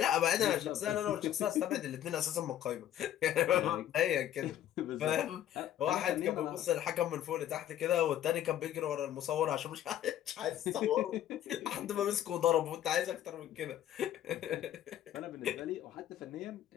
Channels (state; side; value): quieter; right; 11.6 dB